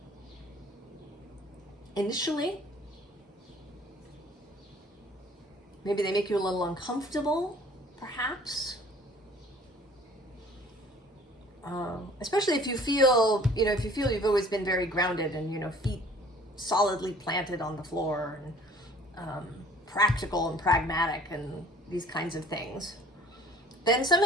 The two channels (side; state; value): both; normal; correlation 0.52